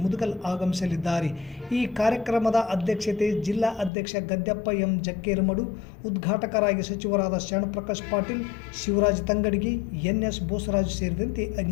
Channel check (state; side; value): drops out; right; at 3.9 s